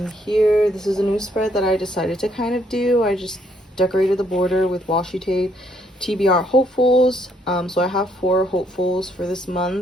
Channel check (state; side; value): normal; both; correlation 0.70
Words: here, this is a new spread that I decided to kind of do. I just decorated the border with washi tape, TBR hopefuls. So I have 4 hopefuls for this